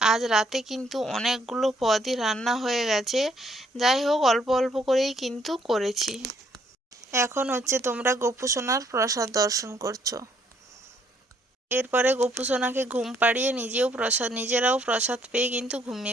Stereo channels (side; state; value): both; normal; correlation 0.67